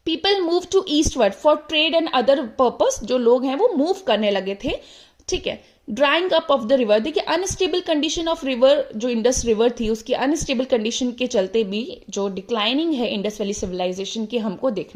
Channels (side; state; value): both; identical; correlation 1.00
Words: People move to eastward for trade and other purpose, जो लोग हैं वो मूव करने लगे थे। ठीक है, drawing up of the river. देखिए, अनस्टेबल कंडीशन ऑफ रिवर, जो इंडस रिवर थी उसकी अनस्टेबल कंडीशन के चलते भी जो डिक्लाइनिंग है इंडस वैली सिविलाइजेशन की हमको